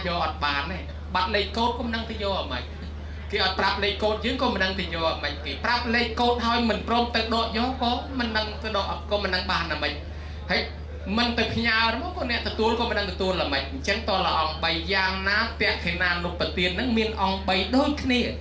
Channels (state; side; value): identical; both; correlation 1.00